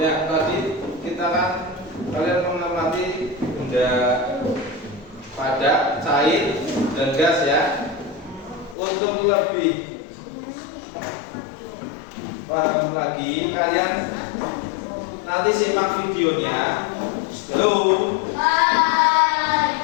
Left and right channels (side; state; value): right; drops out; at 8.8 s